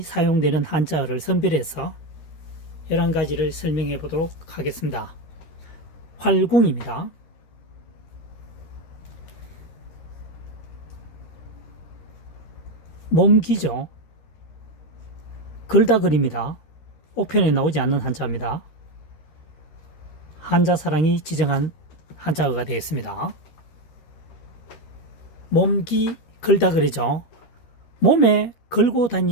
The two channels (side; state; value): right; late; 13 ms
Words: 사용되는 한자어를 선별해서 11가지를 설명해 보도록 하겠습니다. 활궁입니다. 몸기죠. 글다글입니다. 옥편에 나오지 않는 한자입니다. 한자사랑이 지정한 한자어가 되겠습니다. 몸기 글다글이죠. 몸에 걸고